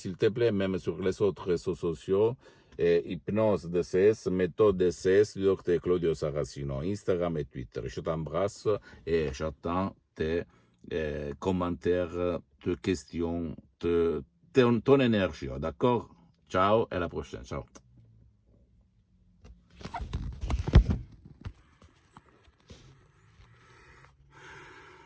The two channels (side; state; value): both; identical; correlation 1.00